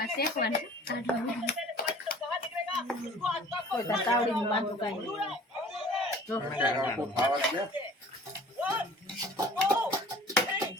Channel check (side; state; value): both; normal; correlation 0.48